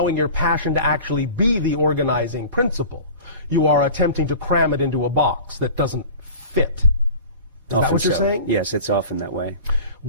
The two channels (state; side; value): inverted; both; correlation -0.39